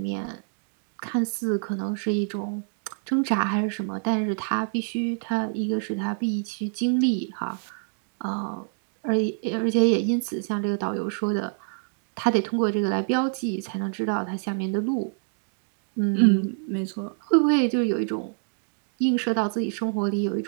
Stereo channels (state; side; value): silent; left; 61 dB below the other